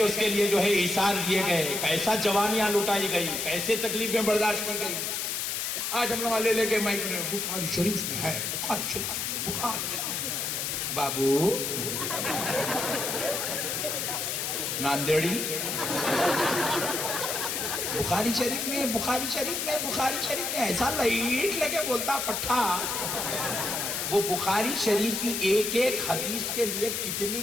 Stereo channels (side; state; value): left; noise; hiss, 1 dB below the sound